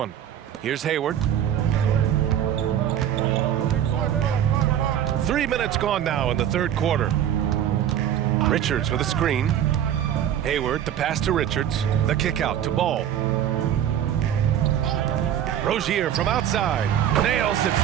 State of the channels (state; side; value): quieter; left; 10.4 dB